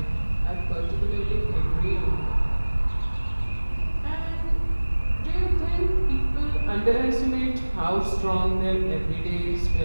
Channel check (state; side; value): inverted; both; correlation -1.00